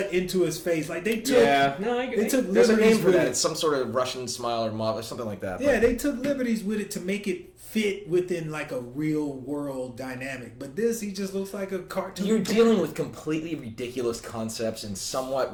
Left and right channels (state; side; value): identical; both; correlation 1.00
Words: into his face. Like they took. Yeah, no, I they took there's liberties a name for with that. it. It's some sort of Russian smile or something like that. Yeah, they took liberties with it to make it fit within like a real world dynamic. But he just looks like a cartoon. You're dealing with completely ridiculous concepts and somewhat